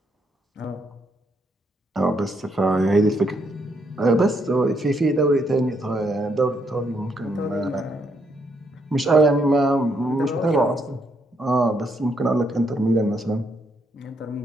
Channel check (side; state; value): both; normal; correlation 0.75